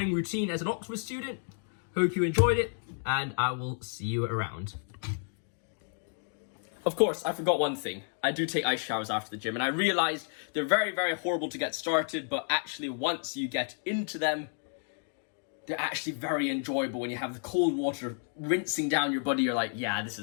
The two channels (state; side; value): silent; right; 57 dB below the other